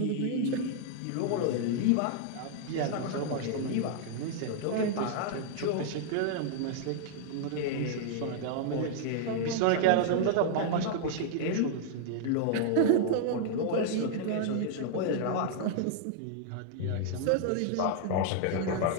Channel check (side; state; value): both; different; correlation -0.01